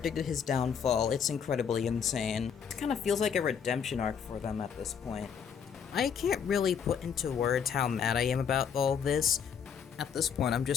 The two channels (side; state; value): right; quieter; 7.3 dB